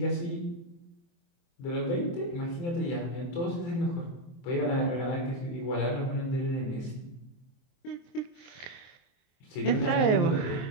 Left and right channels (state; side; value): late; right; 23 ms